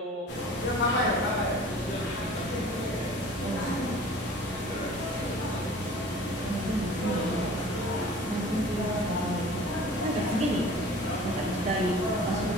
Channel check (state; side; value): normal; both; correlation 0.45